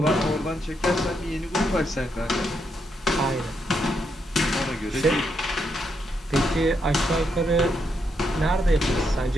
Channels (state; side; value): normal; both; correlation 0.79